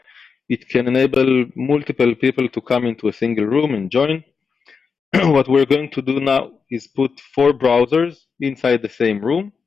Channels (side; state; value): right; quieter; 5.5 dB